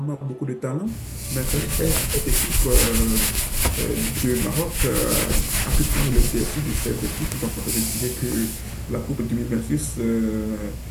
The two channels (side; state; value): both; identical; correlation 1.00